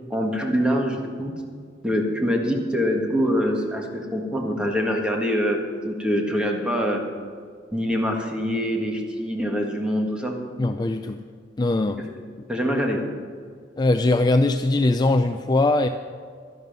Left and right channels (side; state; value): both; normal; correlation 0.74